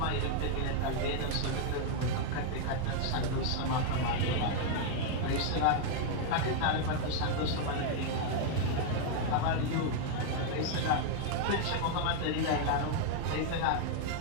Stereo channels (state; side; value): different; both; correlation 0.00